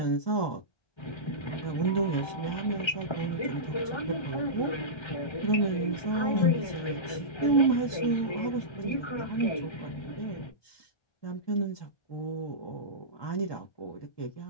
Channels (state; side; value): late; right; 1.3 ms